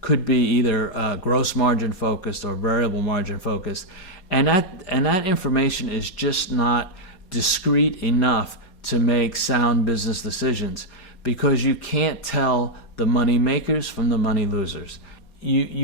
be either gross margin focused or variable margin focused, and that information is just not discrete enough to make sound business decisions, because you can't tell the money makers from the money losers.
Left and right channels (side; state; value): right; late; 4.2 ms